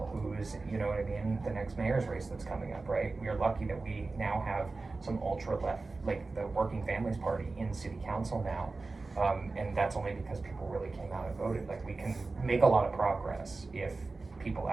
Who's, you know what I mean? The next mayor's race that's coming up, right? We are lucky that we now have some ultra left, like the Working Families Party in city council now. And that's only because people really came out and voted. Like we can make a lot of progress if people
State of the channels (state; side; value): quieter; left; 3.7 dB